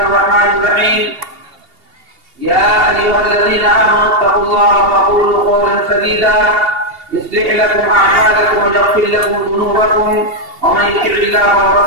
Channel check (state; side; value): late; left; 2.8 ms